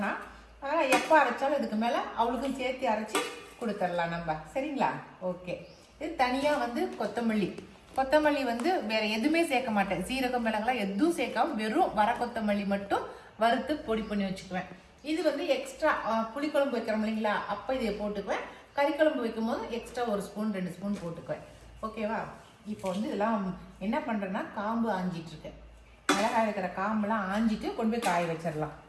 அதனால் எப்போ அரைச்சாலும் இதுக்கு மேலே அவளுக்கும் சேர்த்து அரைச்சி கொடுத்துடலாம் நம்ம. சரிங்களா, ஓகே. இது தனியாக வந்து கொத்தமல்லி வந்து வேற எதுவுமே சேர்க்க மாட்டேன். சீரகம் மிளகாய் எதுவும் சேர்க்காம வெறும் வர கொத்தமல்லி மட்டும் வறுத்து பொடி பண்ணி வச்சுக்குவேன். இது வந்து எக்ஸ்ட்ரா புளிக்குழம்பு வைக்கிறோம் இல்லைங்களா, அப்போ இதை போட்டுக்குவேன். கறி குழம்பு வைக்கும் போது எக்ஸ்ட்ரா 1 ஸ்பூன் 2 ஸ்பூன் போட்டுக்குவேன். ஓகேவா. இப்போ வந்து இதெல்லாம் என்ன பண்ணுறேன்னா காம்பு ஆஞ்சிட்டு இருக்கேன். மிளகாய் இருக்கிற காம்பெல்லாம் ஆஞ்சிட்டு கொண்டு போய் காய வச்சிடலாம்.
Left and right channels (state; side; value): identical; both; correlation 1.00